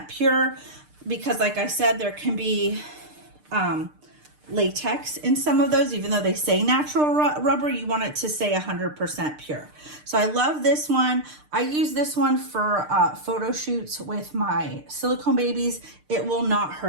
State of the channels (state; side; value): late; left; 6.6 ms